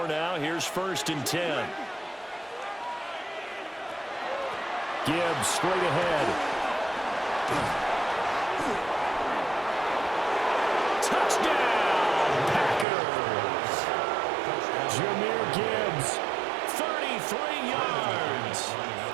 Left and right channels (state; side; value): drops out; left; at 12.9 s